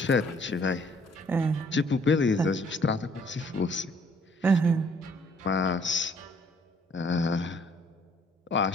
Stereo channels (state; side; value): normal; both; correlation 0.61